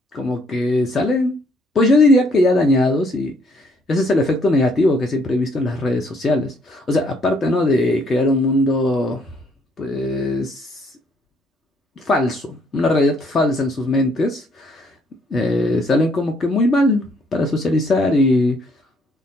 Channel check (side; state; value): both; normal; correlation 0.67